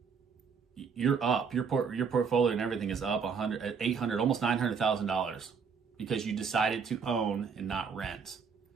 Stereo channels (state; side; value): quieter; left; 6.1 dB